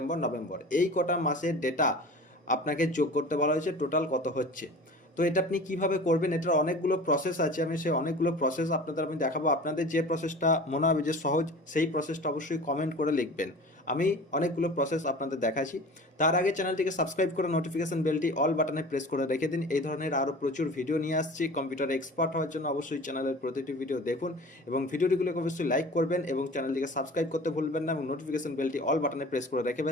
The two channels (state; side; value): normal; both; correlation 0.39